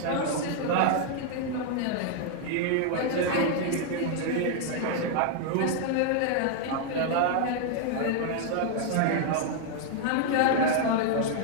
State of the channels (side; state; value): both; different; correlation 0.00